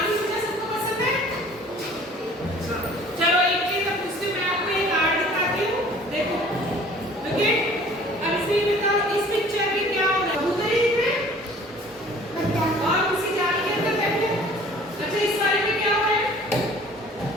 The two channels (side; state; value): both; normal; correlation 0.50